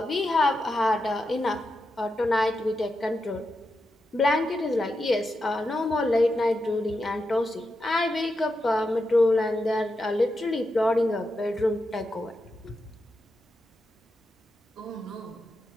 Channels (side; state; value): both; normal; correlation 0.88